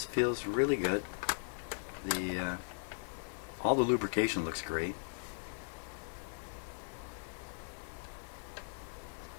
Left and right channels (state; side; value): silent; right; digital silence